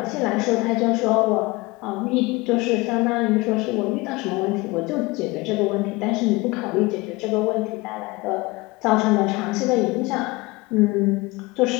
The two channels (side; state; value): right; quieter; 23.1 dB